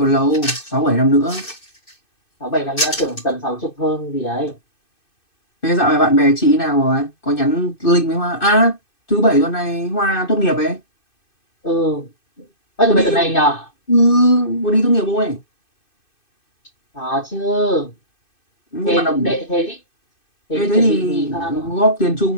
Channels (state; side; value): late; right; 2.6 ms